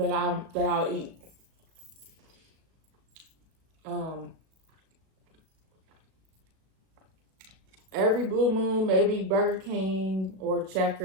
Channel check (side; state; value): left; late; 37 ms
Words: I'll eat. Every blue moon, maybe Burger King or